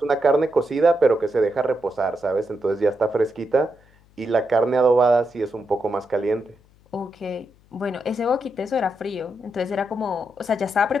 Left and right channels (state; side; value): noise; left; hum, 30 dB below the sound